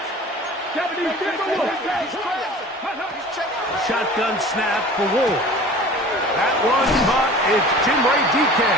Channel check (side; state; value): both; normal; correlation 0.42